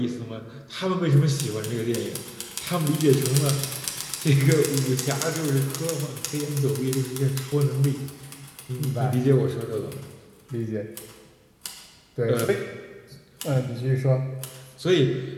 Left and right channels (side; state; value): both; identical; correlation 1.00